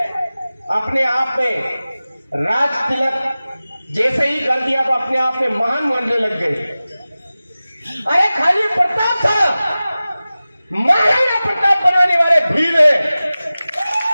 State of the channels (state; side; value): inverted; both; correlation -0.96